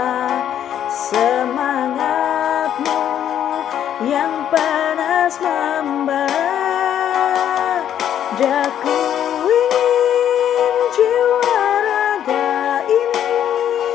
semangatmu yang panas membara. Daku ingin jiwa raga ini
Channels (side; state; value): right; quieter; 10.1 dB